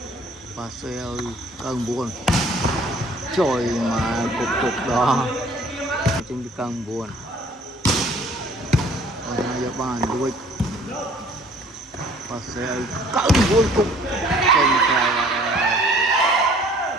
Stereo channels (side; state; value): both; normal; correlation 0.55